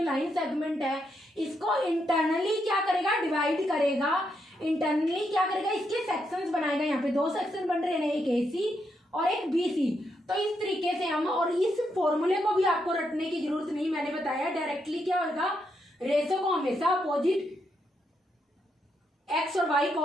लाइन सेगमेंट है इसको इंटरनली क्या करेगा डिवाइड करेगा। इंटरनली क्या करेगा, इसके सेक्शंस बनाएगा। यहाँ पे 2 सेक्शन बन रहे हैं, एक AC और एक BC। तो इस तरीके से हम, और इस फॉर्मूले को भी आपको रटने की जरूरत नहीं, मैंने बताया डायरेक्टली क्या होगा, रेशो को हमेशा अपोजिट x और y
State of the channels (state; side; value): normal; both; correlation 0.80